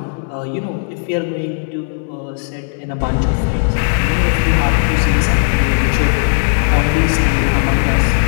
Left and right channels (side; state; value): right; silent; 68 dB below the other